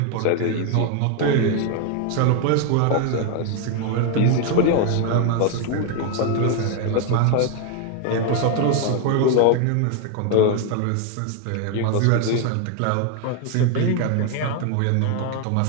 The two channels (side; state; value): both; different; correlation 0.01